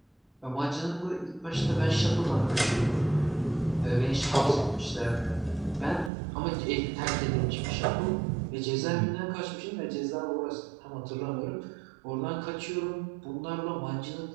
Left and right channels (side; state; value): left; drops out; at 6.1 s